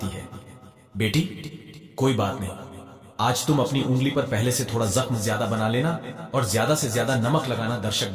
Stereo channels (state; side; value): identical; both; correlation 1.00